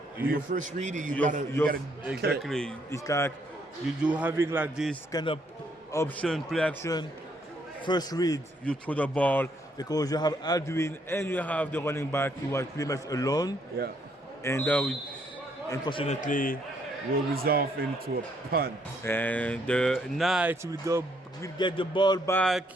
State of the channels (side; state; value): both; normal; correlation 0.70